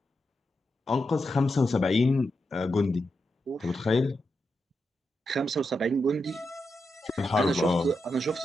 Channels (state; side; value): normal; both; correlation 0.86